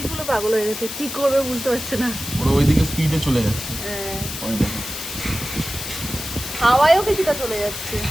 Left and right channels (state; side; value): noise; left; hiss, 7 dB below the sound